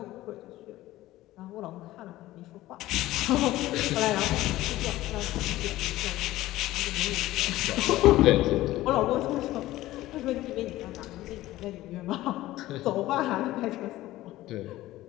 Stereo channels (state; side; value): quieter; right; 16.2 dB